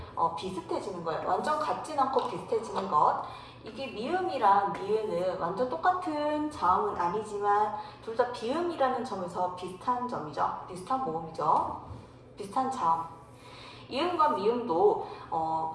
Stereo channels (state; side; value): identical; both; correlation 1.00